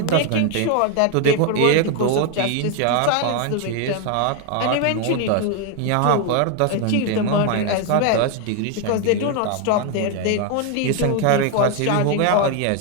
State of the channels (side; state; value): both; different; correlation 0.01